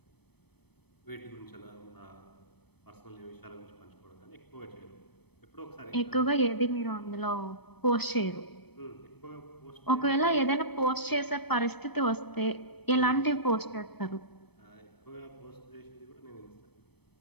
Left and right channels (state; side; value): late; right; 0.98 ms